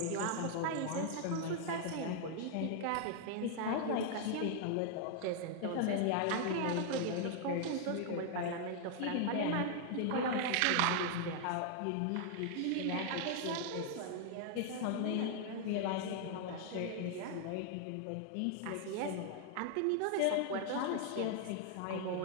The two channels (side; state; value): both; different; correlation 0.00